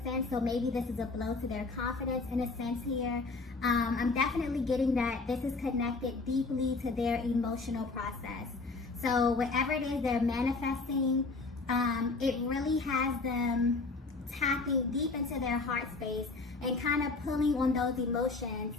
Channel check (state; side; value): quieter; right; 3.8 dB